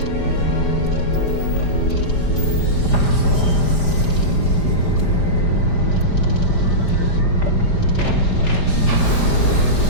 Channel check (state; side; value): late; right; 5.0 ms